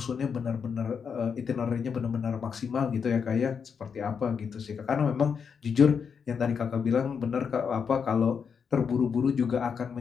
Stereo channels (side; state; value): right; quieter; 6.5 dB